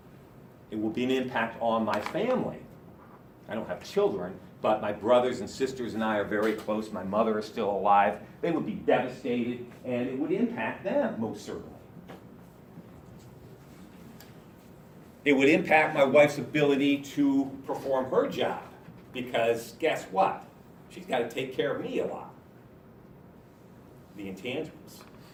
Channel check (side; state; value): both; identical; correlation 1.00